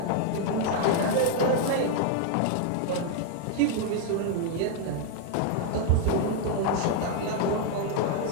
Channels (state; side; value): different; both; correlation 0.00